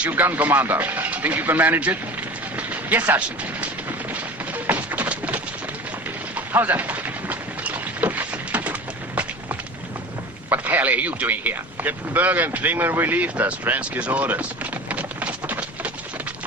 you gun commander. Think you can manage it? Yes, Sergeant. How's that? What the hell are you doing here? Captain Berger and Klingman relieved us. Fransky's orders.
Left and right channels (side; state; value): both; normal; correlation 0.36